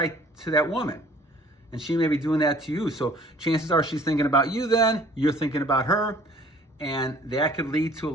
to that woman. And she may be doing that to you. So chances are she's thinking about you then, you're thinking about her. And that could lead to a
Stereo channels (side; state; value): both; normal; correlation 0.54